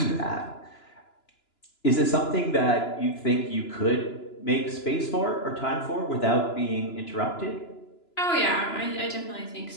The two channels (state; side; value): late; right; 2.9 ms